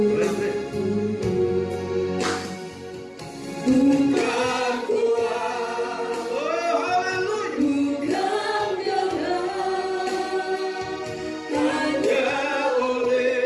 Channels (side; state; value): both; identical; correlation 1.00